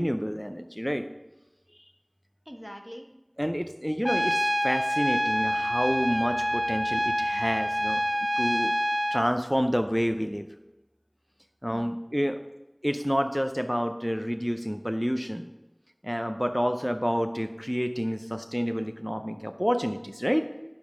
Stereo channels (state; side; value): identical; both; correlation 1.00